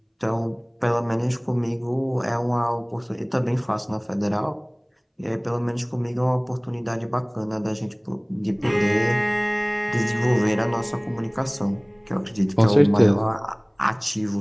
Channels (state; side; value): identical; both; correlation 1.00